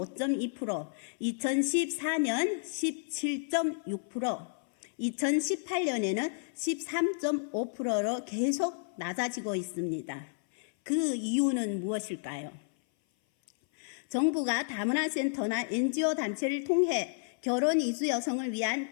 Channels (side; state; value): right; silent; 57 dB below the other